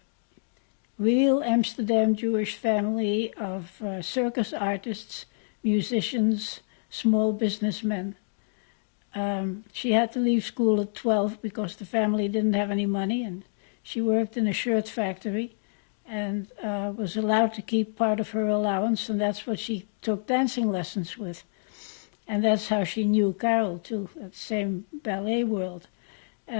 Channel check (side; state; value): right; silent; digital silence